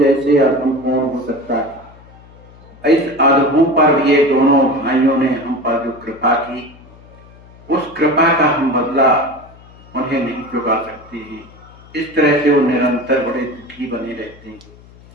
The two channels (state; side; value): noise; left; hum, 23 dB below the sound